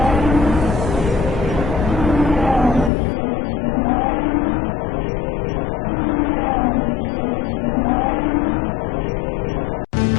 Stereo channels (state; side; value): drops out; right; at 2.9 s